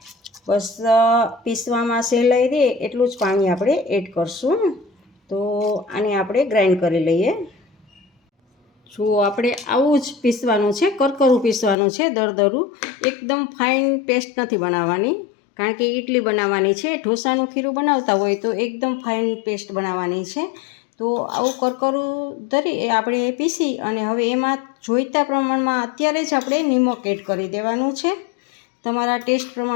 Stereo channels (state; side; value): drops out; right; at 11.8 s